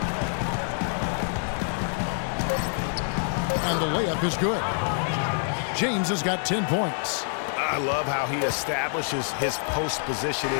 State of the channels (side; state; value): right; silent; 61 dB below the other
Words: And the layup is good. James has got 10 points. I love how he establishes his post position